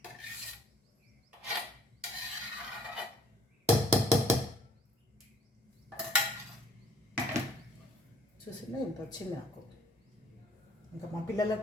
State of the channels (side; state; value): both; normal; correlation 0.57